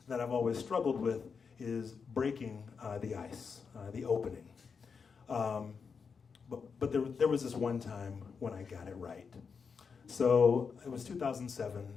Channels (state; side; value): quieter; right; 5.7 dB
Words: that I've always struggled with is breaking the ice, the opening. But there was this one time when I got it right. So it was